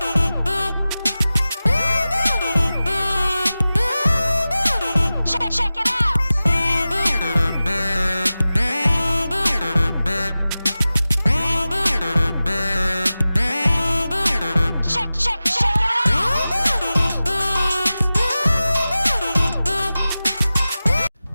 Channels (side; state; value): both; inverted; correlation -0.96